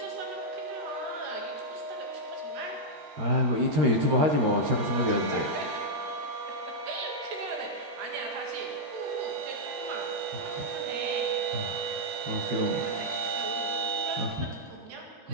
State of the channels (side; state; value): left; late; 13 ms